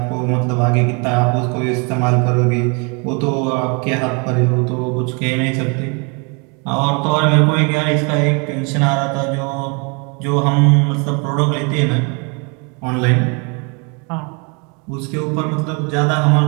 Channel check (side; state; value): left; quieter; 33.1 dB